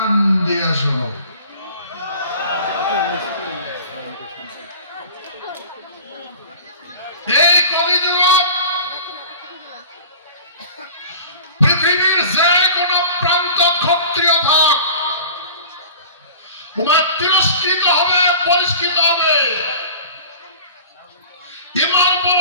দিয়ে শোনো। এই কলিযুগ পৃথিবীর যে কোন প্রান্ত ক্ষত্রিয় থাক, তোমার তিরস্কৃত হবে, পরিষ্কৃত হবে। ইমার উপর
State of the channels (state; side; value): inverted; both; correlation -0.41